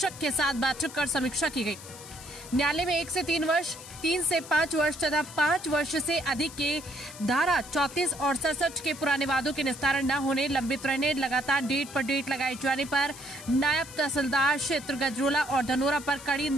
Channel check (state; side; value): noise; left; hiss, 15 dB below the sound